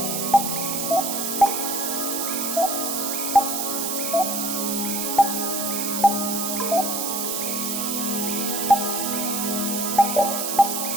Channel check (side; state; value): right; noise; hiss, 1 dB below the sound